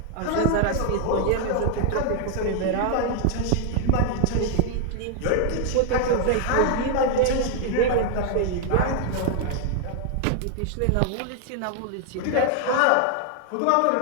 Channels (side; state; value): both; different; correlation 0.00